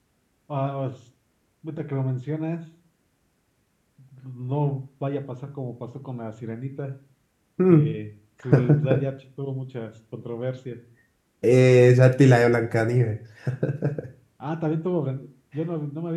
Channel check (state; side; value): identical; both; correlation 1.00